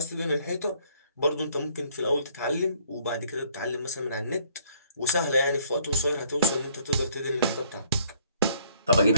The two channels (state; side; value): inverted; both; correlation -0.62